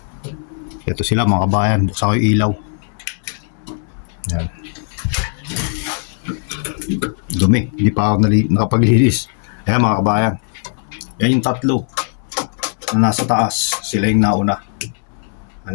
Ito sila mga kabayan. Buksan ko yung ilaw. Yan. Dumi. Hindi pa ako nakapaglinis. Ayan mga kabayan. Yan yung tatlo na nasa taas. Sila yung nauna. Ano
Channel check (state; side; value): silent; right; 61 dB below the other